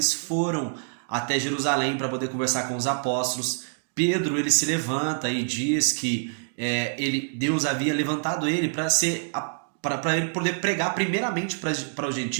foram até Jerusalém para poder conversar com os apóstolos. Pedro, ele se levanta e diz que Deus havia levantado ele para ele poder pregar primeiramente para os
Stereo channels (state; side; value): silent; left; digital silence